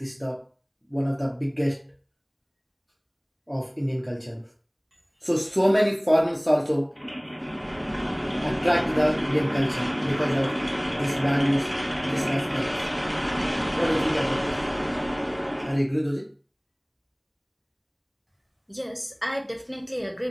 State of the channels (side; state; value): both; identical; correlation 1.00